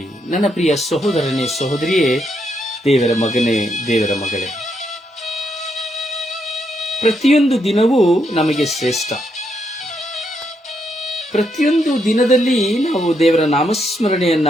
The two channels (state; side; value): normal; both; correlation 0.78